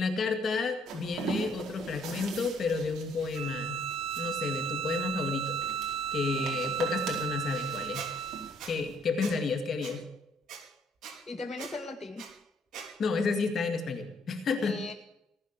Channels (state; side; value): normal; both; correlation 0.64